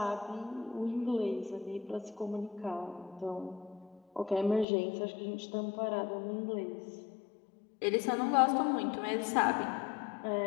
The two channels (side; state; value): right; drops out; at 4.7 s